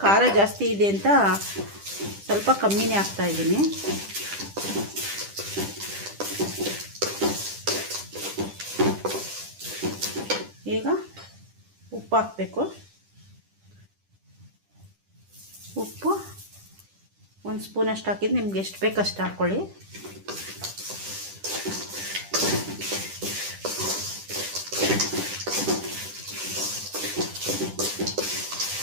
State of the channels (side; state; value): left; late; 10 ms